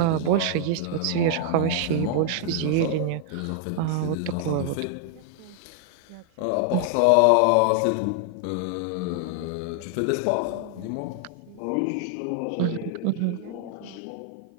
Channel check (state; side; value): different; both; correlation 0.00